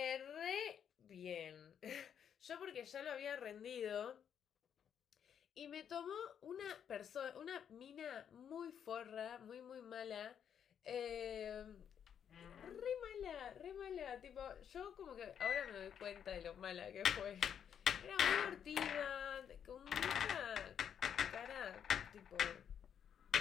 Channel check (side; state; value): right; quieter; 8.4 dB